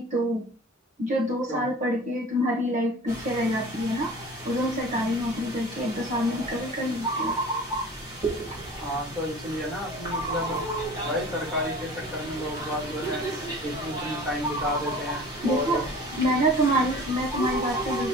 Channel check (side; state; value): both; normal; correlation 0.42